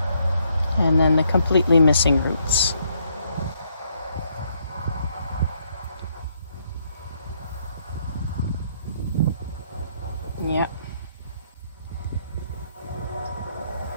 And then the completely missing roots. Yeah.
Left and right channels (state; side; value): inverted; both; correlation -0.72